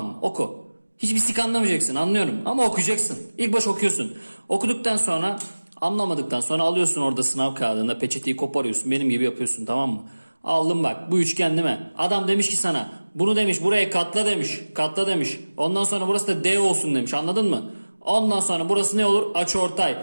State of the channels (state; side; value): inverted; both; correlation -1.00